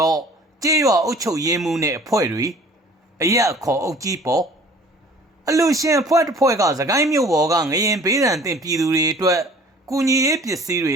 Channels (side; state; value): both; normal; correlation 0.49